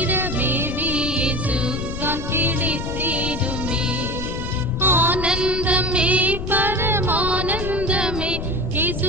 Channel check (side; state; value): left; noise; rumble, 5 dB below the sound